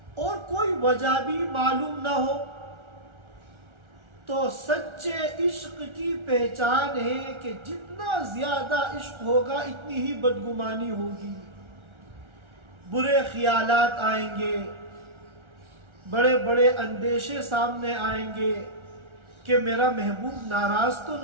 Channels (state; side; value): late; left; 1.4 ms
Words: اور کوئی وجہ بھی معلوم نہ ہو، تو سچے عشق کی پہچان ہے کہ جتنا زیادہ عشق ہوگا اتنی ہی بدگمانی ہوگی، برے خیالات آئیں گے، بڑے بڑے اندیشے سامنے آئیں گے کہ میرا محبوب ناراض تو